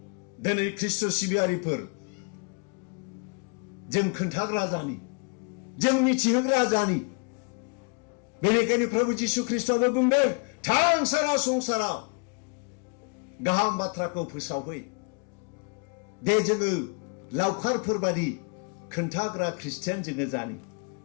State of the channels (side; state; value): right; quieter; 35.3 dB